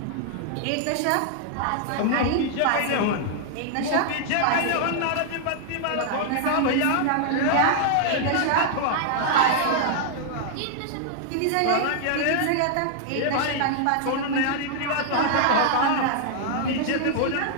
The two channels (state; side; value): different; both; correlation -0.01